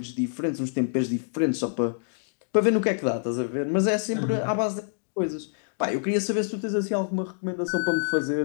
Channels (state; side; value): silent; right; digital silence